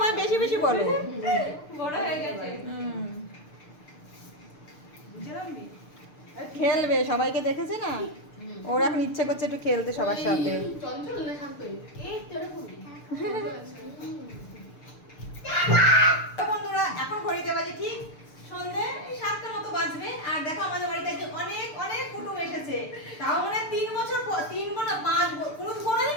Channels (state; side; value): late; right; 6.7 ms